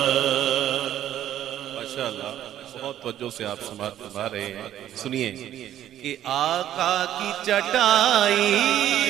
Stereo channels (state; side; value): quieter; left; 11.7 dB